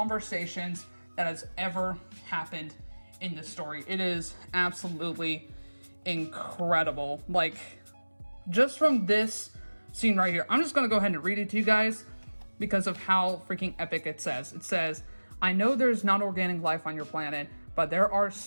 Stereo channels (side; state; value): both; inverted; correlation -1.00